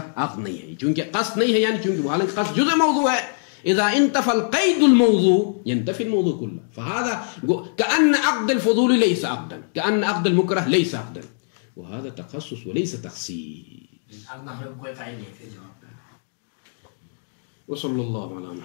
عقد نہیں ہے, چونکہ قصد نہیں ہے, یعنی چونکہ حالانکہ قصد جزء موضوع ہے. اذا انتفى القيد الموضوع ينتفي الموضوع كله. فهذا كأن عقد الفضول ليس عقدا, كأن عقد المكره ليس عقدا, وهذا تخصص وليس تخصيص. وصلى الله على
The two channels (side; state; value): right; silent; digital silence